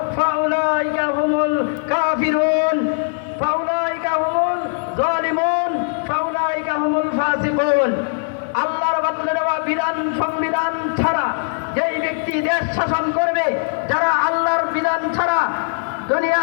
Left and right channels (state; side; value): silent; right; digital silence